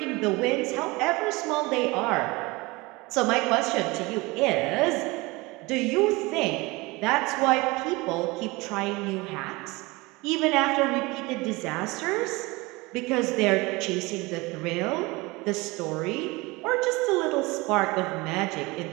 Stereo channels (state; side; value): quieter; left; 23.5 dB